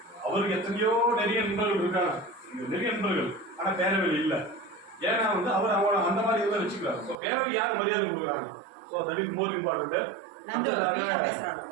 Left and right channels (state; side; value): drops out; left; at 7.2 s